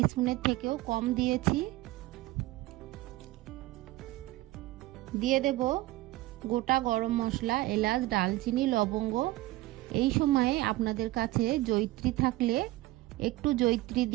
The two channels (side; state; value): left; quieter; 18.0 dB